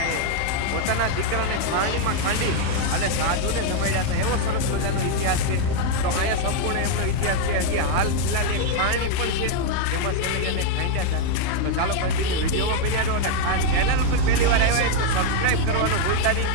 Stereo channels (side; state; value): both; different; correlation 0.00